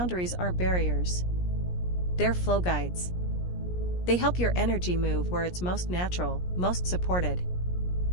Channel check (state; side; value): late; right; 17 ms